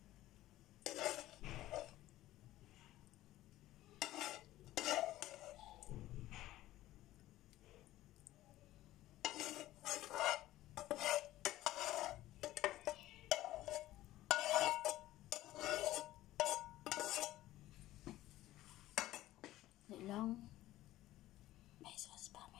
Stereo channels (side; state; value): right; quieter; 15.5 dB